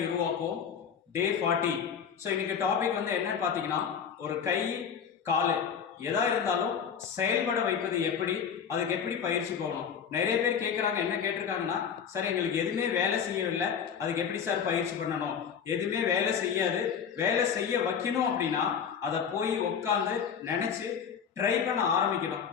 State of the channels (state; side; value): quieter; right; 7.3 dB